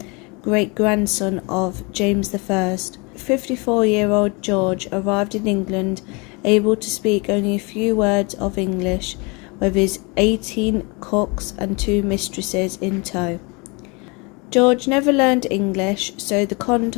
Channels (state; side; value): quieter; right; 29.0 dB